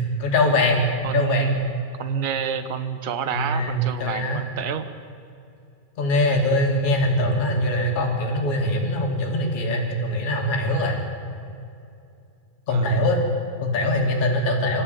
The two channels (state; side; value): late; right; 2.4 ms